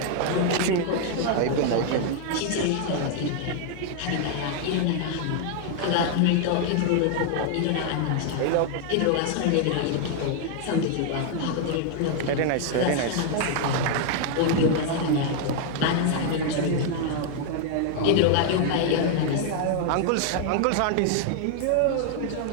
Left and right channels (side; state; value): both; different; correlation 0.00